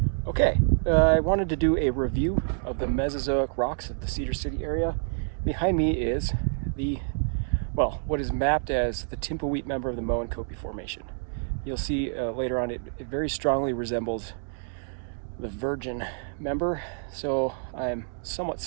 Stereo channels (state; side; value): silent; left; digital silence